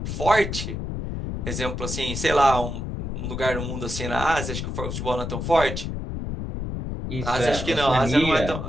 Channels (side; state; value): left; noise; rumble, 4 dB below the sound